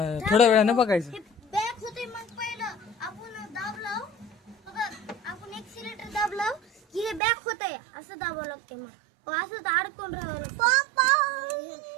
थोड्या वेळानं बघायचं. बॅक होते मग पहिलं आपण दाबलं बघा. आपण एक्सिलेटर दाबलं की हे बॅक होतंय. असं दाबावं लागते. मग असं तर अडकून राहावं लागतं.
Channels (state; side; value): drops out; left; at 7.2 s